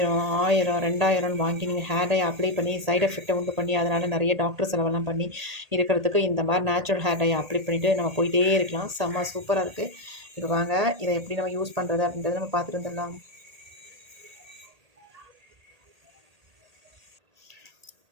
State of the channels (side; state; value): left; late; 1.8 ms